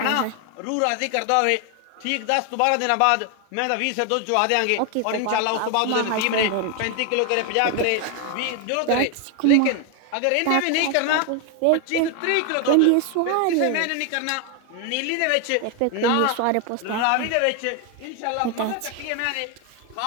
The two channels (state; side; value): different; both; correlation 0.01